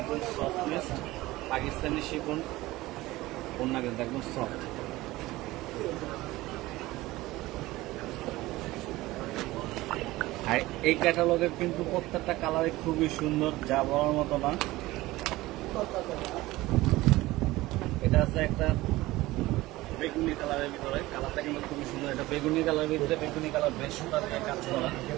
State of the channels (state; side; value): quieter; left; 18.6 dB